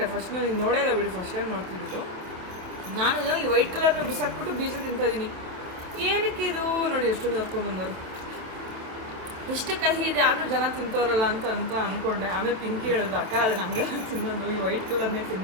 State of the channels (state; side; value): late; left; 28 ms